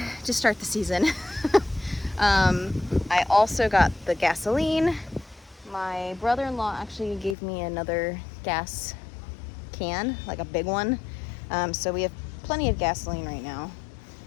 to start the season. I also got the gasoline. My brother-in-law actually gave me another gas can, like a big one. So we have plenty of gasoline right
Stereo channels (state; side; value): drops out; right; at 7.4 s